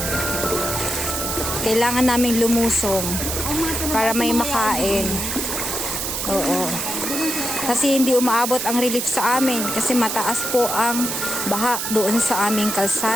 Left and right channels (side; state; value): right; noise; hiss, 3 dB below the sound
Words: Kailangan naming lumusong para may makain. Oo. Kasi hindi umaabot ang relief sa amin kasi mataas po ang baha doon sa aming